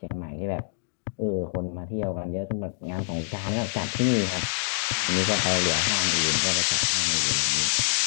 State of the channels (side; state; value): right; silent; digital silence